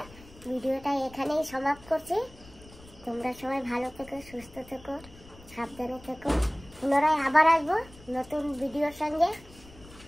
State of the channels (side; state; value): left; noise; rumble, 21 dB below the sound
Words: ভিডিওটা এখানেই সমাপ্ত করছি তোমরা সবাই ভালো থেকো সুস্থ থেকো সাবধানে থেকো পুনরায় আবার আসবো নতুন ভিডিওর সঙ্গে